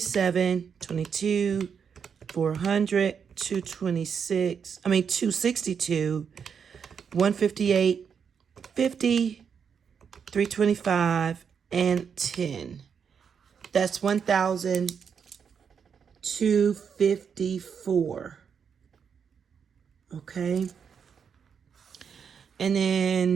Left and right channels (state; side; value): quieter; left; 6.9 dB